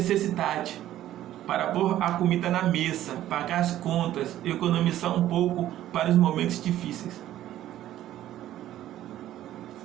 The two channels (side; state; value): left; quieter; 13.1 dB